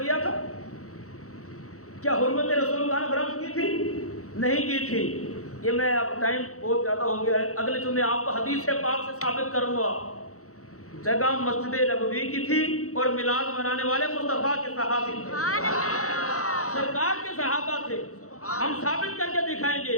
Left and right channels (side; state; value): right; late; 0.65 ms